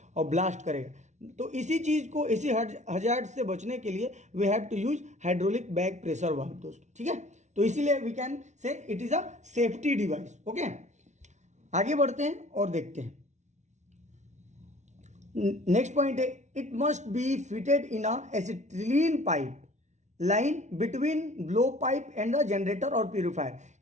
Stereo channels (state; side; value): late; left; 0.34 ms